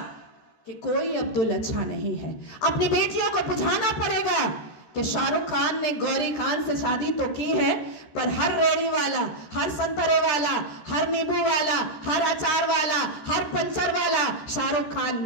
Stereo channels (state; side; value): late; right; 14 ms